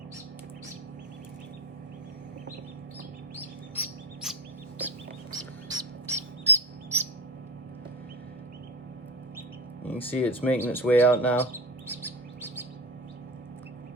You can see it's making its way out now.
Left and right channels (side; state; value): both; normal; correlation 0.26